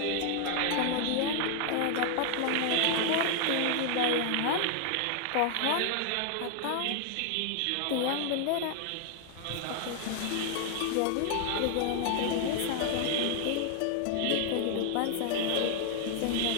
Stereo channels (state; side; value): different; both; correlation 0.00